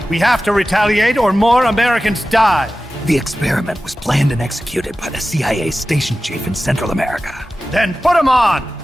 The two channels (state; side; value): normal; both; correlation 0.95